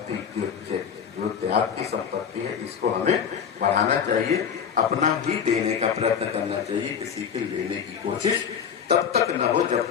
जो त्याग की संपत्ति है इसको हमें बढ़ाना चाहिए, अपना ही देने का प्रयत्न करना चाहिए, किसी के लेने की कोशिश तब तक न हो जब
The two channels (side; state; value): right; quieter; 7.5 dB